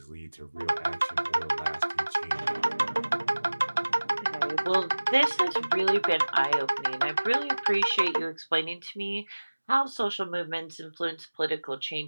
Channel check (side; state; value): both; inverted; correlation -1.00